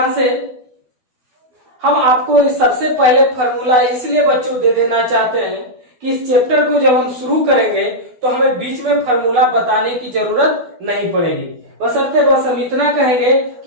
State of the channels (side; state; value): left; late; 12 ms